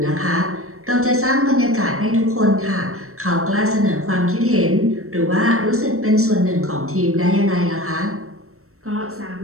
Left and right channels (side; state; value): left; late; 0.63 ms